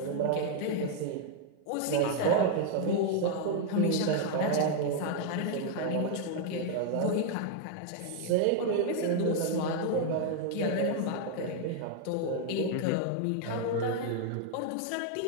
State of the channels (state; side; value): different; both; correlation 0.00